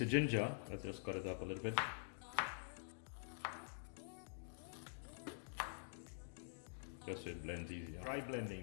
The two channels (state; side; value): silent; right; digital silence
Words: ginger, let's just cut it up a little bit. Just so it blends easier. Dry